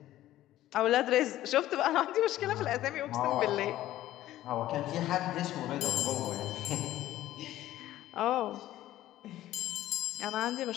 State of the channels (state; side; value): quieter; right; 14.2 dB